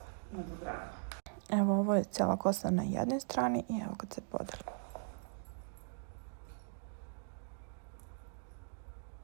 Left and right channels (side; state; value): left; silent; digital silence